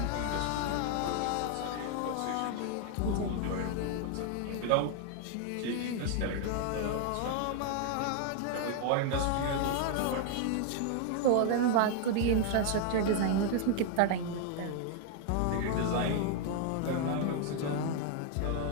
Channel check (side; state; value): both; different; correlation 0.00